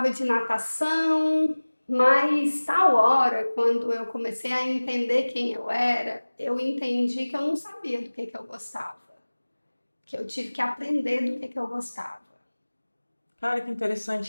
de natação, mas tal hora, quando eu comecei a entender quem eu era, eu entendi que eu não sabia do que eu gostava, que eu tive que aprender do que eu gostava. Cara, que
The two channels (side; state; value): both; inverted; correlation -1.00